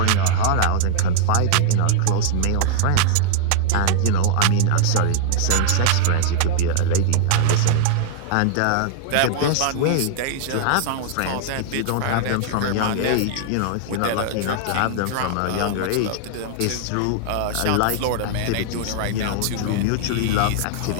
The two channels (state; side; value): different; both; correlation -0.01